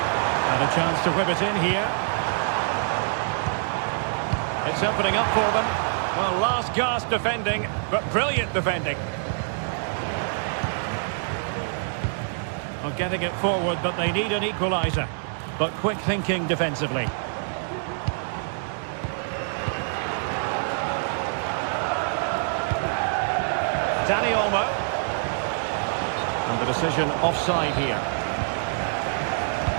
And a chance to whip it in here. It's opening up for them. Well, last gasp defending, but brilliant defending. Well, getting it forward, but they need an equaliser. But quick thinking defensively. Dani Olmo. And the decision offside here.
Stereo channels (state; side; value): silent; left; digital silence